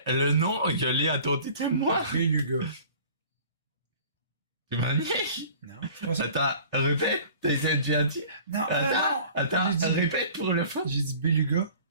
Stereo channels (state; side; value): inverted; both; correlation -0.47